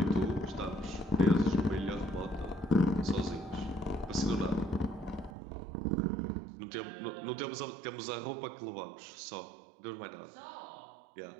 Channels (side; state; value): left; drops out; at 5.4 s